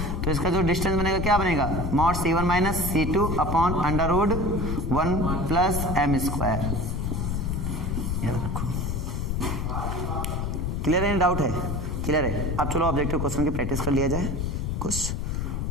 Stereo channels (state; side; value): noise; left; rumble, 1 dB below the sound